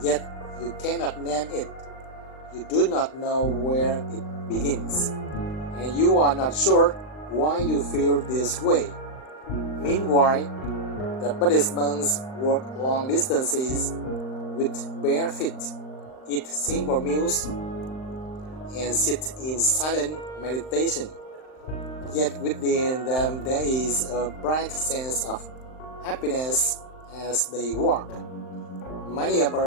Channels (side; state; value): right; late; 39 ms